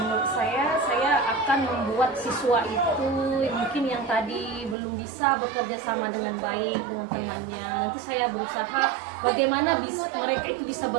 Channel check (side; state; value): left; drops out; at 4.8 s